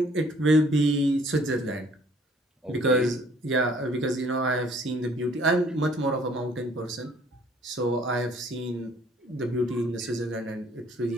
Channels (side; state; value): both; normal; correlation 0.58